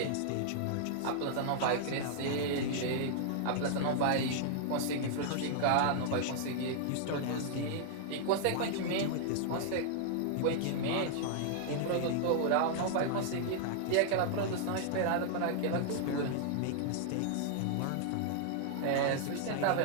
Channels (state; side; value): different; both; correlation -0.01